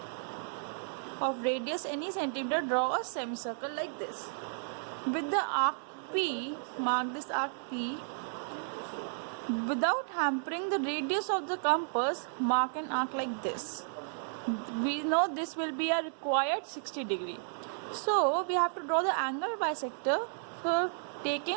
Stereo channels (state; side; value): silent; left; digital silence